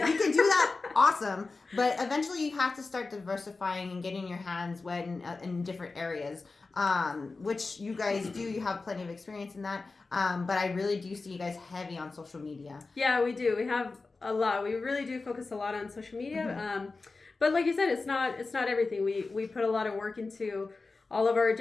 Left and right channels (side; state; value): right; quieter; 3.8 dB